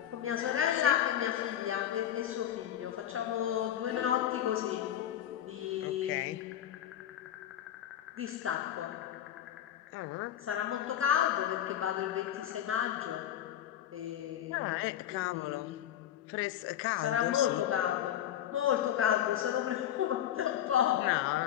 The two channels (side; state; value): right; quieter; 11.0 dB